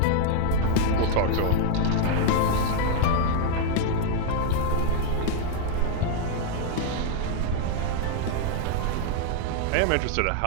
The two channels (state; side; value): different; both; correlation 0.00